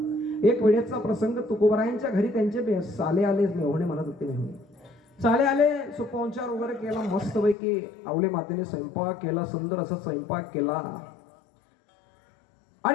एक वेळेचा प्रसंग, तुकोबारायांच्या घरी त्यांचे साले आले, मेहुणे म्हणत होते. मेहुणे साले आले, सुपवंचार वगैरे केला, मस्तपैकी आवले मातेने स्वयंपाक केला, सुंदर असा स्वयंपाक केला.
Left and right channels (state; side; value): drops out; right; at 7.6 s